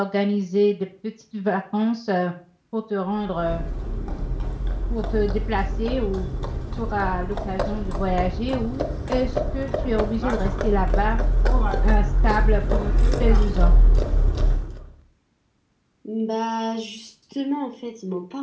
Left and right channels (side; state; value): both; identical; correlation 1.00